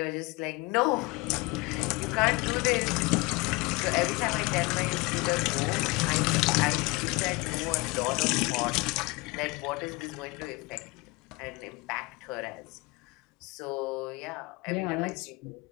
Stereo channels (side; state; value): right; quieter; 24.8 dB